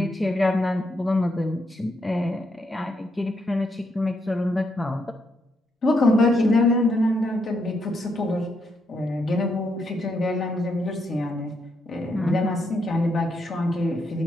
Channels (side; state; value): both; normal; correlation 0.78